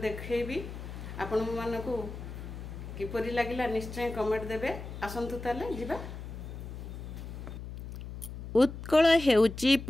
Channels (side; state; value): left; noise; hum, 10 dB below the sound